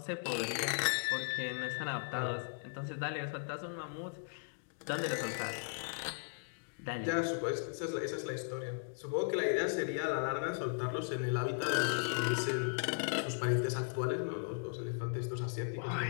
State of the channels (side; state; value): right; silent; digital silence